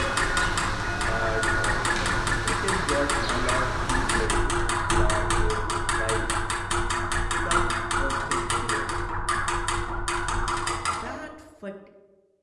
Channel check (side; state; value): both; identical; correlation 1.00